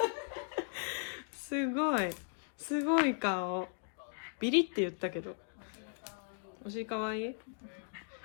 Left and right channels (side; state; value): right; silent; 53 dB below the other